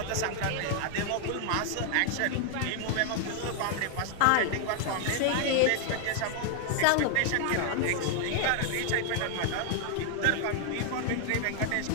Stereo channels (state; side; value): different; both; correlation 0.00